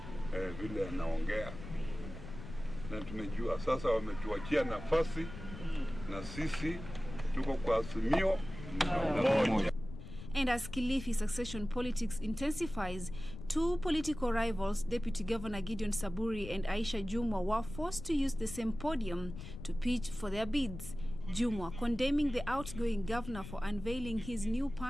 vile anaongea. Na tumejua sasa wametuachia nafasi na sisi tuko kwa Azimio moja. And as Kilifi succession politics intensifies, two political rivals, Deputy Governor Gideon Samburu and Aisha Jumwa, were forced to use the same podium to pitch for their bids. Jumwa condemning the outgoing governor for unveiling his new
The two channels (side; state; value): left; noise; rumble, 11 dB below the sound